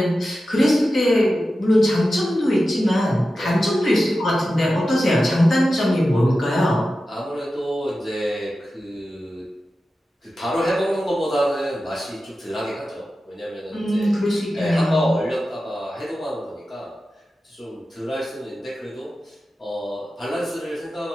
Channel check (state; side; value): normal; both; correlation 0.93